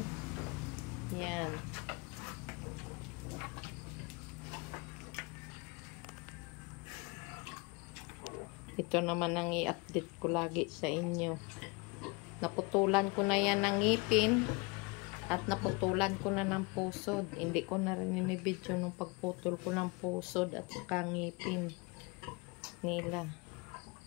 Yan. Ito naman ang i-update ko lagi sa inyo. Naputulan ko na yan ng ngipin at naputulan ko na ng pusod. Hindi ko na rin ini-video nung pagputol ko ng pusod at ngipin nila.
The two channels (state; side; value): quieter; right; 27.5 dB